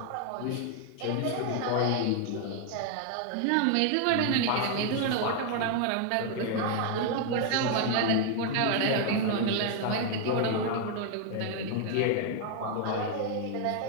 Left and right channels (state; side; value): different; both; correlation 0.00